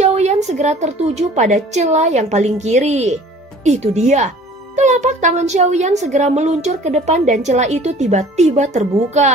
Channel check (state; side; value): normal; both; correlation 0.49